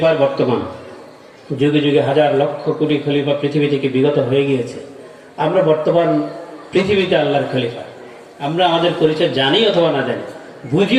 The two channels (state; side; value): identical; both; correlation 1.00